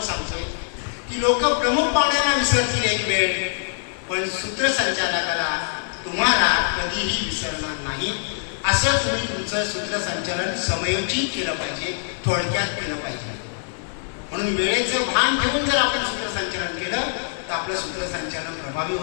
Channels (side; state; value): right; silent; digital silence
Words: सांगतोय की लोक प्रमुख पाहुण्यांना विसरतील एक वेळ, पण सूत्रसंचालकाला तुम्हाला कधीही विसरणार नाही. असं तुम्ही तुमचं सूत्रसंचालन समयोचित केलं पाहिजे, थोडक्यात केलं पाहिजे. म्हणून वेळेचं भान ठेवून जर आपण सूत्रसंचालन केलं तर आपलं सूत्रसंचालन प्रभावी